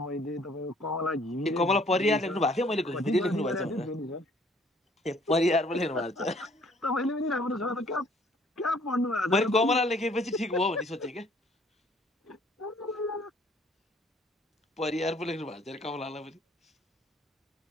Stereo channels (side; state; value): both; normal; correlation 0.60